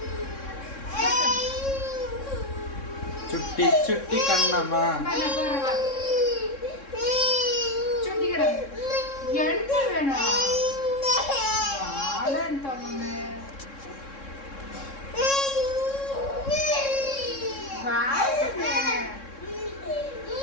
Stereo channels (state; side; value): late; right; 3.6 ms